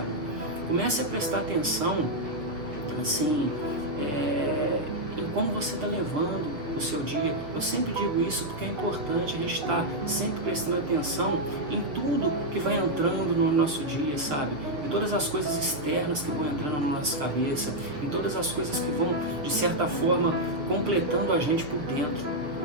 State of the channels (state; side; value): late; left; 6.9 ms